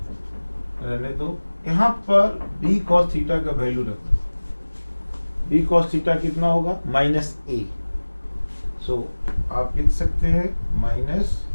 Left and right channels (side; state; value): both; inverted; correlation -1.00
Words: रहने दो। यहाँ पर b cos थीटा का वैल्यू रखो। b cos थीटा कितना होगा? Minus a। सो आप लिख सकते हैं